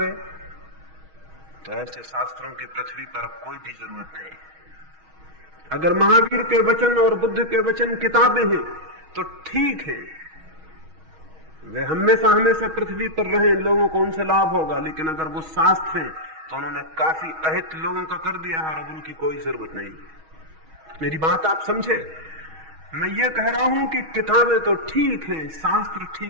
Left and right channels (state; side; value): late; left; 6.3 ms